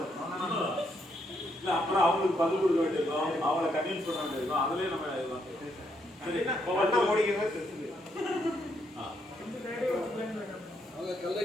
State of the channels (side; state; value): both; normal; correlation 0.76